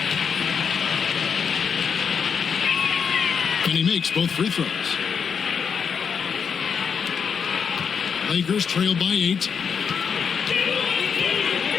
And he makes both free throws. Lakers trail by 8.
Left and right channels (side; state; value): right; quieter; 6.6 dB